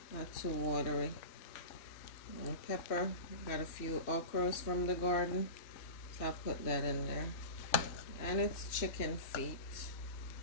Not too watery. And pepper. Got a few okras from the garden. So I'll put that in there. And it's chicken feet.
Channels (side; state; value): right; late; 3.1 ms